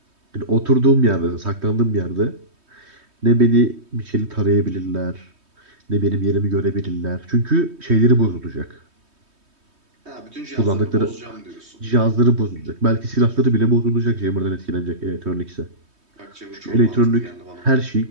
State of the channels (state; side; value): late; left; 3.2 ms